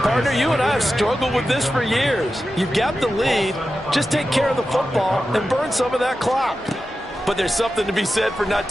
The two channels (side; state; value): both; normal; correlation 0.92